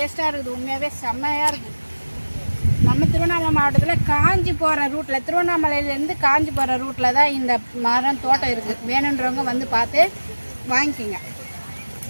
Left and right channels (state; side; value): inverted; both; correlation -1.00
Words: இருக்குது. உண்மையாகவே செம்மையாக இருக்குது. நம்ம திருவண்ணாமலை மாவட்டத்தில் காஞ்சி போகிற ரூட்டில், திருவண்ணாமலையிலேருந்து காஞ்சி போகிற ரூட்டில் தான் இந்த மரம் தோட்டம் இருக்குது. வேணுன்றவங்க வந்து பார்த்து வாங்கிக்கிங்க.